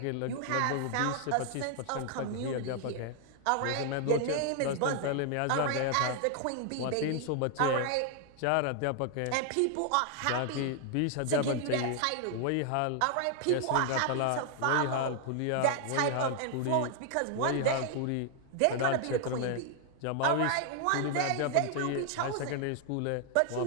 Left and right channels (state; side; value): different; both; correlation 0.00